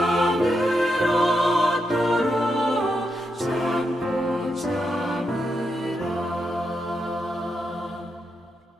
얻도록 잡고 참으라.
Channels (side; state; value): both; normal; correlation 0.83